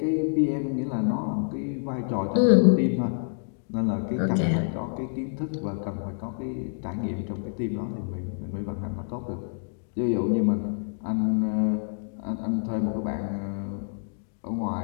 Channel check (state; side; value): silent; right; digital silence